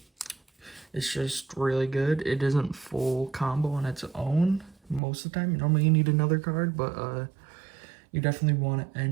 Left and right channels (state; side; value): drops out; left; at 5.0 s